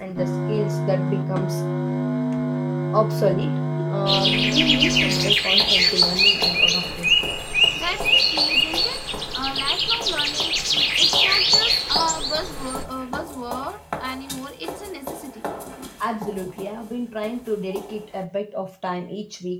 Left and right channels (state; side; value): identical; both; correlation 1.00